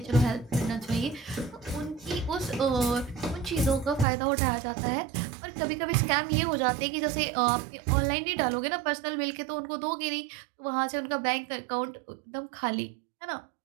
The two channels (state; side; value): drops out; left; at 4.0 s